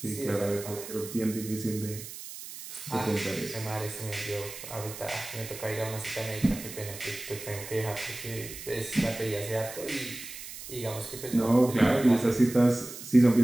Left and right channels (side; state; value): right; noise; hiss, 12 dB below the sound